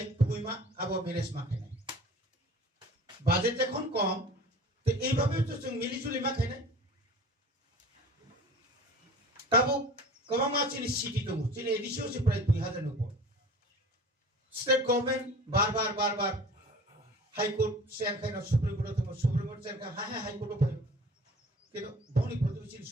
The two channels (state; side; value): normal; both; correlation 0.42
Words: কুইমা আবো ম্যানেজ মা খাই বাজেট যখন কম তো এইভাবে তো जों মিলিজুলি মা খাই না তাবো কবা মা চিনি সিটি দङ চিনি এডিসিও সে প্রায় 2000 উপর স্টেট গভর্নমেন্ট বারবার হাইকোর্ট শেয়ার খাইনা সুপ্রিম কোর্ট শেয়ার খা হ্যাঁ হাইকোর্ট ফাই কিন্তু বনি প্রতিবেশী